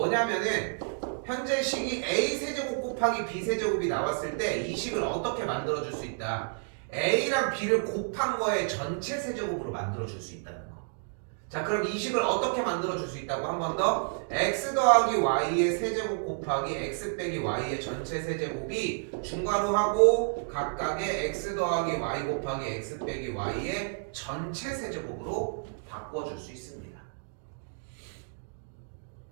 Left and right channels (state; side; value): silent; left; digital silence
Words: 현재 식이 a 세제곱 곱하기 b 세제곱이 나왔을 때 이 식을 어떻게 만들어줄 수 있다. a랑 b를 곱한 거의 전체 세제곱으로 만들어줄 수 있다는 거. 자, 그럼 이 식을 어떻게 만들어줄 수 있다고 한 번 더. x 더하기 y의 세제곱 곱하기 x 빼기 y의 전체 세제곱이 중괄호하고 각각의 x 더하기 y 곱하기 x 빼기 y의 전체 세제곱으로 바꿔줄 수 있습니다.